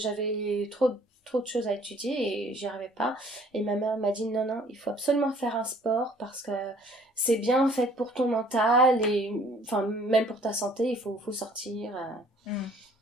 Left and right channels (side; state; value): both; normal; correlation 0.57